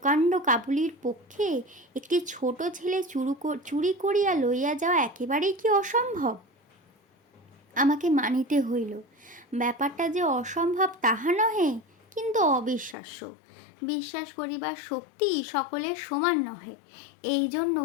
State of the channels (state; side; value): drops out; right; at 13.0 s